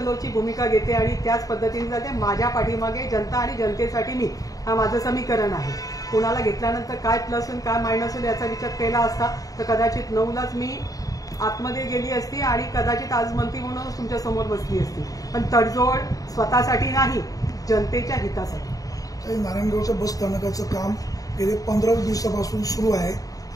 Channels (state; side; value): late; right; 0.17 ms